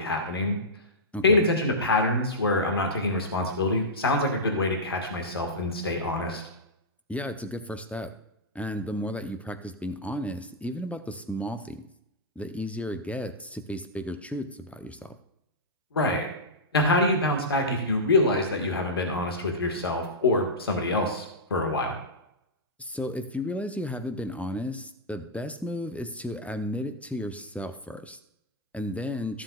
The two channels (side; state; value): both; normal; correlation -0.12